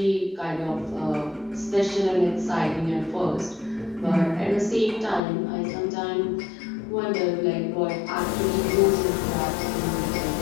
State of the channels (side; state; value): right; drops out; at 5.2 s